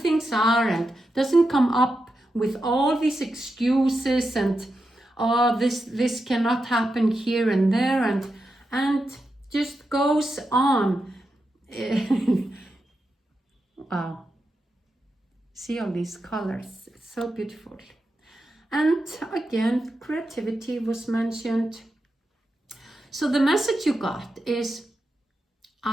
are, and doesn't come up with all these excuses and oh, this cannot happen here and there, and just goes on. Wow. See all these colors, it's so beautiful. And again, creativity was mentioned. So the message you got is,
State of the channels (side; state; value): both; normal; correlation 0.88